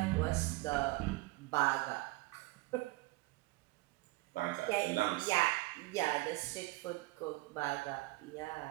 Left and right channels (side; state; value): left; quieter; 20.6 dB